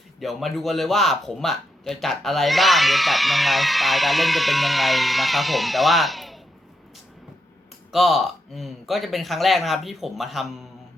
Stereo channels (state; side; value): normal; both; correlation 0.82